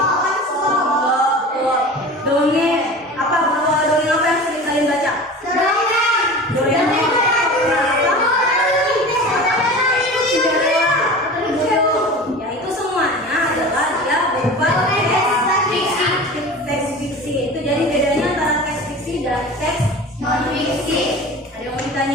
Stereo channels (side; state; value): both; normal; correlation 0.36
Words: dongeng. Apa dongeng apa yang sering kalian baca? Dongeng. Ya itu semuanya adalah dia berupa teks fiksi. Itu jadi bedanya antara teks fiksi dan teks non fiksi. Ada yang mau